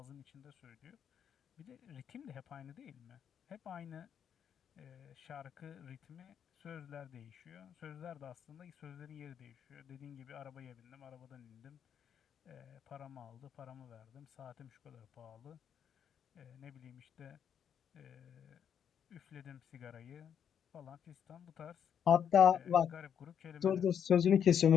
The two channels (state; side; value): quieter; right; 8.4 dB